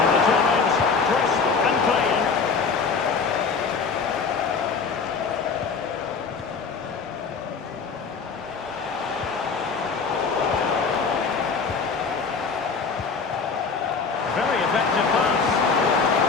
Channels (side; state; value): right; quieter; 5.1 dB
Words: the challenge, crisp and clean. Very effective pass.